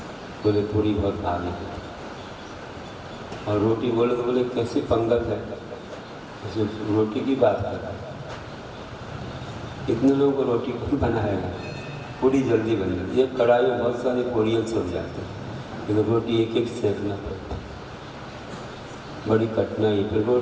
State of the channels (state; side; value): identical; both; correlation 1.00